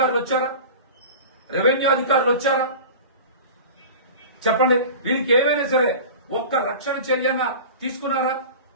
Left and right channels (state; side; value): inverted; both; correlation -0.35